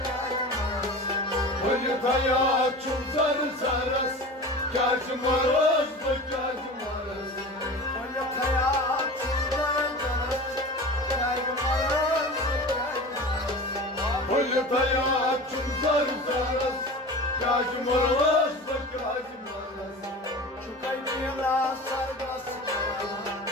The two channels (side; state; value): both; normal; correlation 0.34